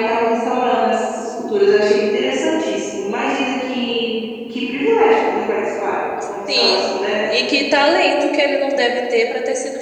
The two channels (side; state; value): both; identical; correlation 1.00